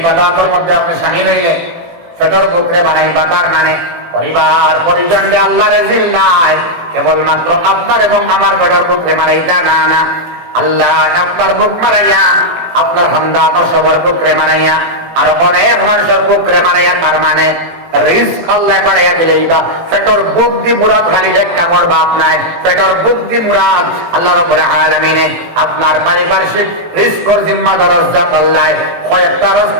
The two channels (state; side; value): late; left; 18 ms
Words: বাদাতের মধ্যে আপনি শামিল হইলে ফেটর বুকরে মারাই বাতার মানে পরিবার পরিজনকে আল্লাহ রেজিল নাই কেবলমাত্র আপনার এবং আমার ফেটর বুকরে মারাই তা না না আল্লাহ আপনার বুক মারাইয়া আপনার বান্দা আপনার সবার বুকরে মারাইয়া আর অনেক মানুষের বুকরে মারাইয়া তার মানে রিস্ক আল্লাহ বাড়াইয়া দিলেই বা পেটর বুক দি মুরাদ খালি একটা মোর বাপ নাই পেটর বুক দি মুরাদ আল্লাহ রাব্বুল আলামিনে আপনার পারিপার্শ্বিক রিস্কর জিম্মাদার রাজ্জাক আল্লাহ কয়েকটা